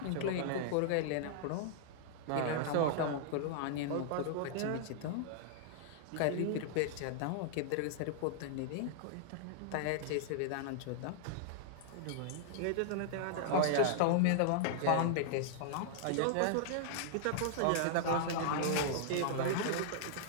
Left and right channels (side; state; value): both; different; correlation -0.01